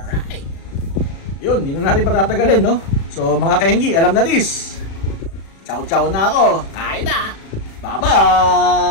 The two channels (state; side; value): late; right; 36 ms